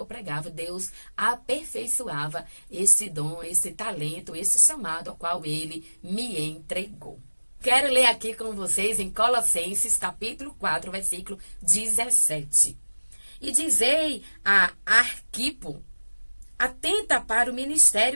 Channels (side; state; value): both; inverted; correlation -1.00